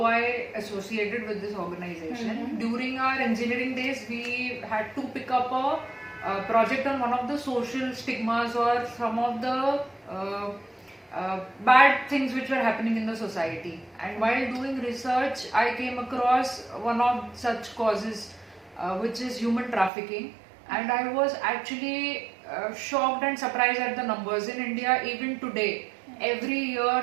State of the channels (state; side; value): drops out; left; at 19.9 s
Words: I associated with this organization. During our engineering days, we had to pick up a project on one of the social stigmas or some of the bad things which were happening in the society. And while doing research, I came across one of such causes, which is human trafficking. And I was actually shocked and surprised at the numbers. In India, even today, every year